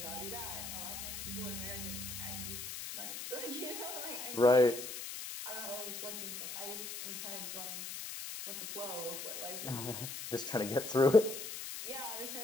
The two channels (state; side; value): noise; left; hiss, 7 dB below the sound